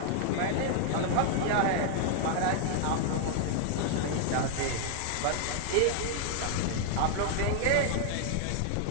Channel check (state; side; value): different; both; correlation 0.00